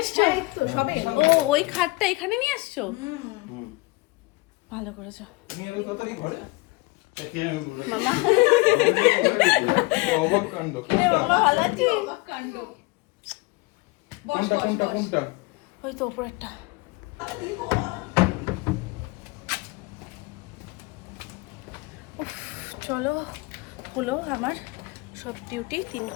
এসছো? ও ওই খাটটা এখানে নিয়ে আসছো? ভালো করেছো মামা। অবাক কাণ্ড। মামা ভালো আছিস? কোনটা? ওই তো উপরেরটা। উফ, চলো হলো আমার সব ডিউটি। 3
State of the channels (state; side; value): quieter; right; 24.1 dB